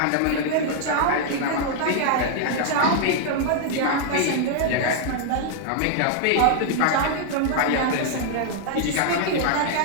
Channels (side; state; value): both; different; correlation 0.00